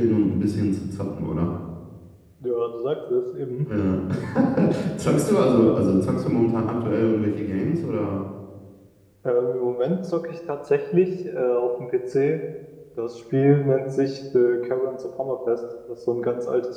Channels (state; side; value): identical; both; correlation 1.00